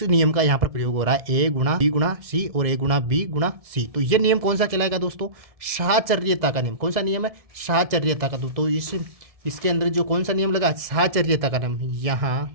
नियम का यहाँ पर प्रयोग हो रहा है, ए गुणा बी गुणा सी और ए गुणा बी गुणा सी। तो ये नियम कौन सा कहलाएगा दोस्तों, साहचर्यता का नियम। कौन सा नियम है, साहचर्यता का। तो इसके अंदर जो कौन सा नियम लगा, साहचर्यता का नियम।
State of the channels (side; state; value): left; late; 1.7 ms